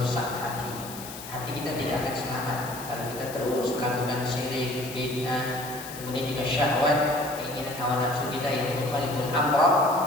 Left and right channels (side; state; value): left; noise; hiss, 13 dB below the sound